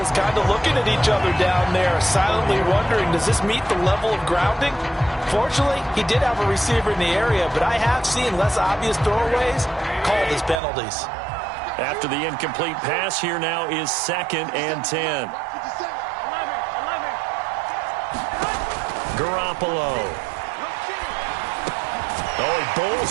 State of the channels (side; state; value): left; drops out; at 10.6 s